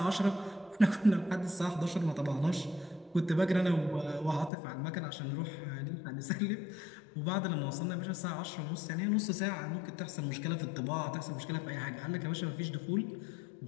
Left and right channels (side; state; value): right; drops out; at 4.5 s